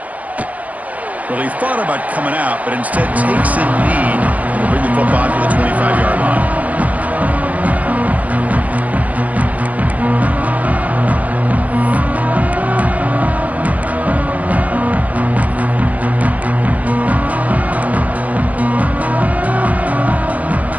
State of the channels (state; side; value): late; left; 0.076 ms